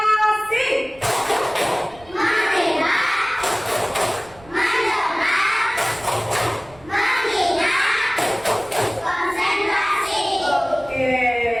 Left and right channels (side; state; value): right; noise; rumble, 24 dB below the sound